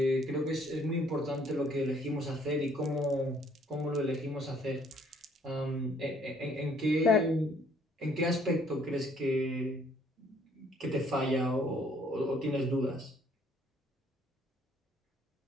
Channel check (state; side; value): normal; both; correlation 0.63